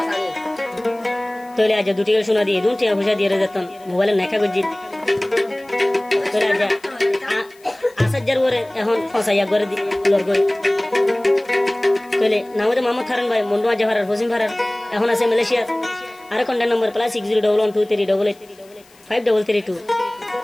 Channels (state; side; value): noise; left; hiss, 28 dB below the sound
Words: তোলে আজ দুটি শোনা দিয়ে দুটি পয়সা দিয়ে যেতাম মোবাইলে নেখা গজি তোলে আজ আসার ওরে এখন ফসাইয়া করে লর করে তোলে নামে মোহাম্মদ হারুন ভাই মন্ডুয়া জাহারার হোসিম ভারার এখন আছে মালয়েশিয়া আর কন্ট্যাক্ট নম্বর